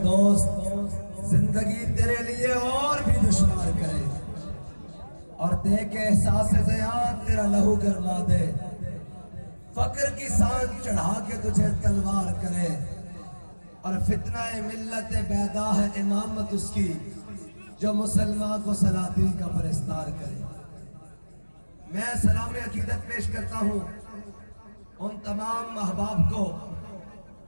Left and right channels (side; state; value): both; inverted; correlation -1.00